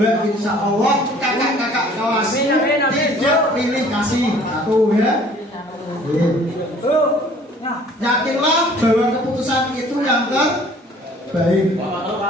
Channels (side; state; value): both; normal; correlation 0.53